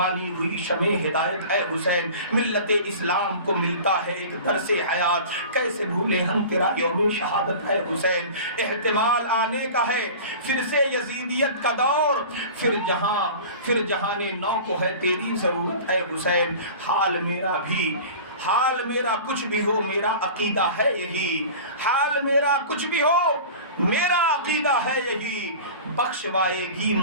ہوئی شمع ہدایت اے حسین، ملت اسلام کو ملتا ہے ایک درس حیات، کیسے بھولے ہم تیرا یوم شہادت اے حسین۔ احتمال آنے کا ہے پھر سے یزیدیت کا دور، پھر جہان نو کو ہے تیری ضرورت اے حسین۔ حال میرا کچھ بھی ہو میرا عقیدہ ہے یہی، حال میرا کچھ بھی ہو میرا عقیدہ ہے یہی، بخشوائے گی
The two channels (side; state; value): both; inverted; correlation -0.37